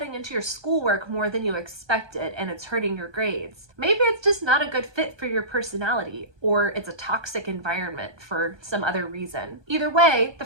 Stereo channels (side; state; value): left; late; 1.2 ms